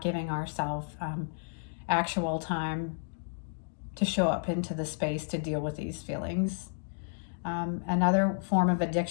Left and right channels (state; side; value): silent; right; digital silence